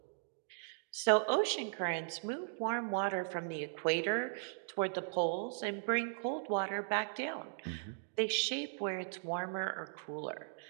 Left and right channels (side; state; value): left; silent; digital silence